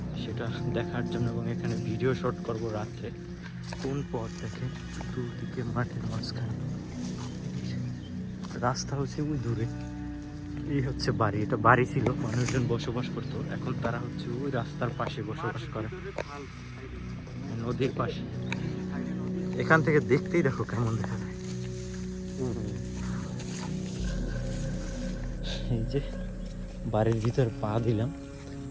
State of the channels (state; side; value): identical; both; correlation 1.00